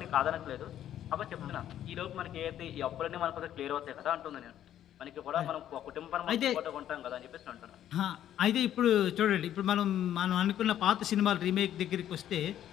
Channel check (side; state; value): right; quieter; 11.2 dB